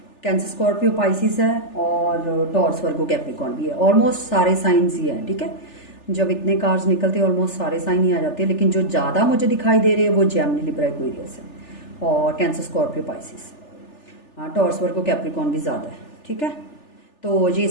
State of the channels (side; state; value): right; late; 3.4 ms